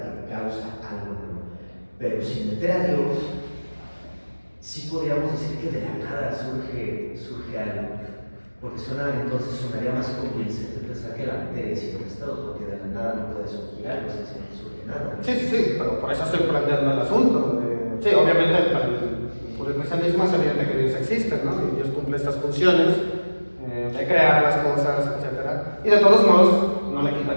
que causa algo nuevo. Pero sin meter a Dios, sí podríamos decir que de la nada surge algo. Porque entonces sonaría más convincente pensar que la materia siempre ha estado, porque de la nada no puede surgir algo, o sea, si no surge nada. Sí, pero por eso estoy planteando el asunto. Sí, obviamente por el cristianismo es evidente que Dios existe, ¿no? Y Dios cumple estas funciones de crear las cosas, etc. Y de todos modos, no le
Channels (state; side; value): inverted; both; correlation -1.00